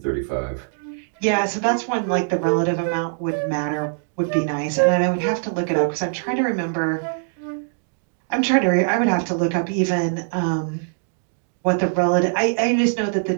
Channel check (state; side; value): silent; left; digital silence